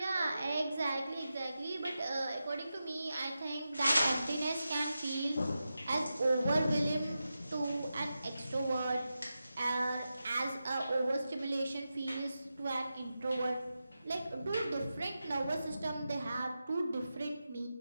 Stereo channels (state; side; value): inverted; both; correlation -0.91